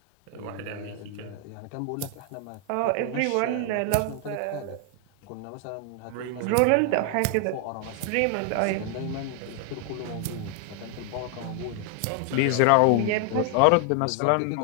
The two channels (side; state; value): both; different; correlation 0.00